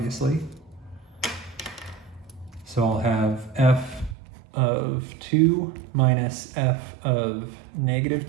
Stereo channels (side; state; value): left; drops out; at 4.2 s